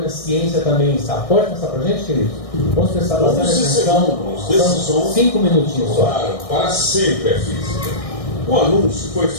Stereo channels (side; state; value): right; late; 1.6 ms